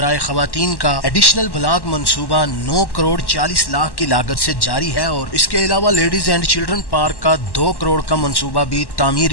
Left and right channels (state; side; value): late; right; 1.1 ms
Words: خواتین کا ایڈیشنل بلاک منصوبہ 9 کروڑ 40 لاکھ کی لاگت سے جاری ہے اور اس کے علاوہ لیڈیز اینڈ چلڈرن پارک کا 2 کروڑ کا منصوبہ بھی